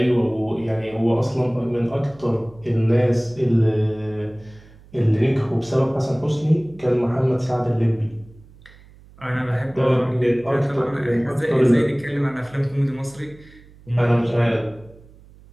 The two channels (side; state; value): right; noise; hum, 24 dB below the sound